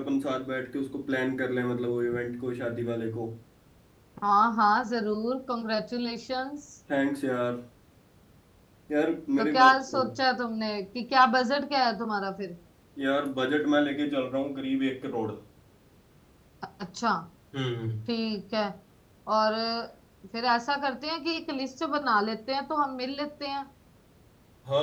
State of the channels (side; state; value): both; identical; correlation 1.00